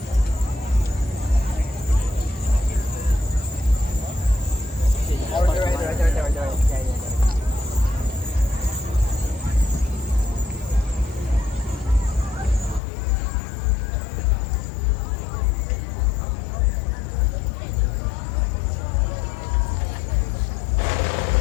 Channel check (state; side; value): drops out; right; at 12.8 s